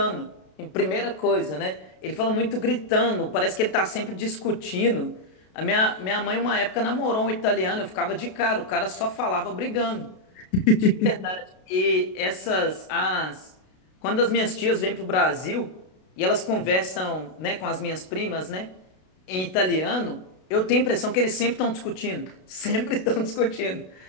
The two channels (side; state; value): right; late; 32 ms